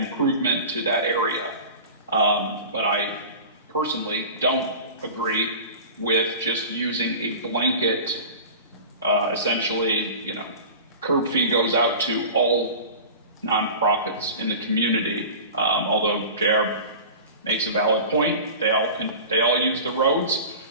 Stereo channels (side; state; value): both; inverted; correlation -0.35